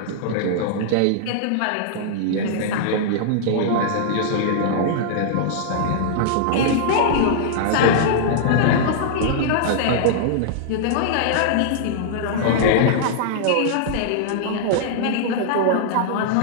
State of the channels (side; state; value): both; different; correlation -0.02